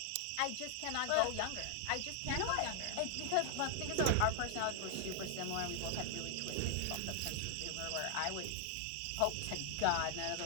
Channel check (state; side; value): different; both; correlation 0.00